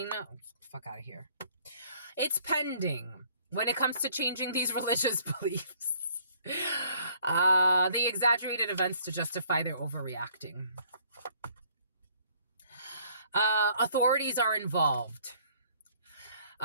Oh, fuck out of here. It's pending when it comes to changing these religious beliefs. They exaggerated events to justify their overreacting. Authorities are involved.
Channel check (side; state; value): both; inverted; correlation -0.60